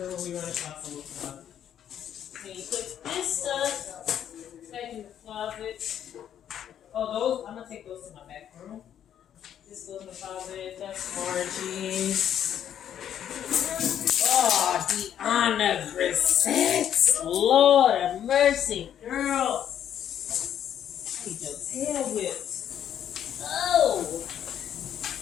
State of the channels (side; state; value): right; quieter; 9.9 dB